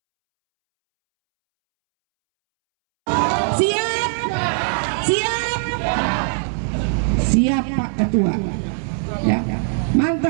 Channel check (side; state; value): left; silent; 65 dB below the other